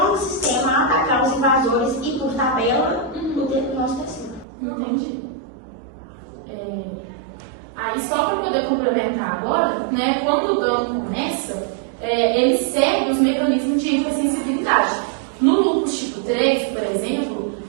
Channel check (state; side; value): drops out; left; at 4.5 s